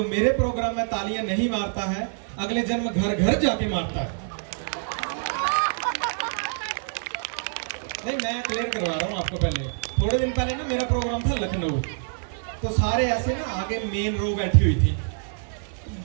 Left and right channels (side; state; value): left; silent; 61 dB below the other